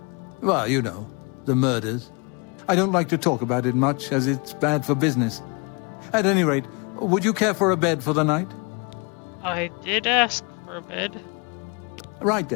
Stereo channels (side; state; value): right; quieter; 32.1 dB